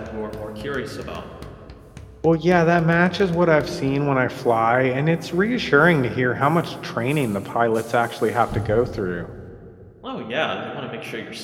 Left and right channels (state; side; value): identical; both; correlation 1.00